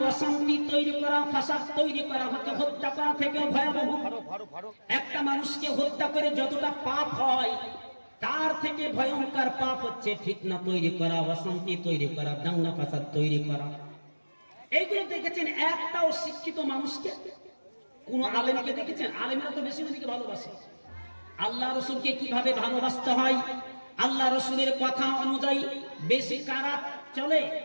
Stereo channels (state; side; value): inverted; both; correlation -1.00